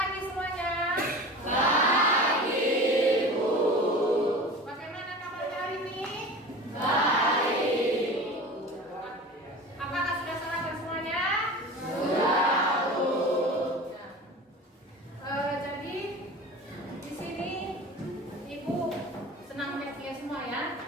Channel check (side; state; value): both; normal; correlation 0.35